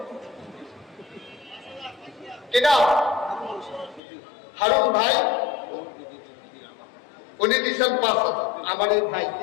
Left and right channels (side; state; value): right; drops out; at 4.0 s